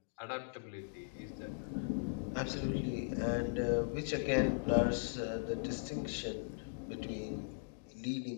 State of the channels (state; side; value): silent; right; digital silence